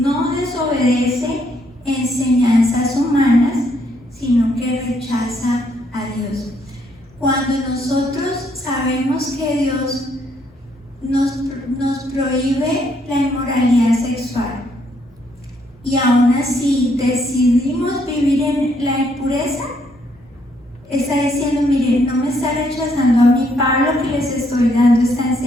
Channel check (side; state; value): both; normal; correlation 0.71